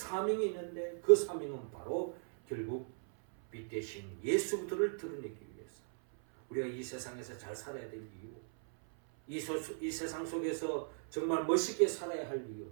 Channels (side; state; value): left; silent; 53 dB below the other